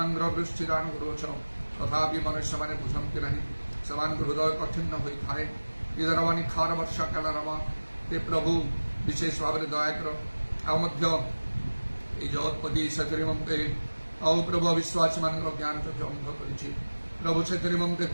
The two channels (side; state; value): both; inverted; correlation -1.00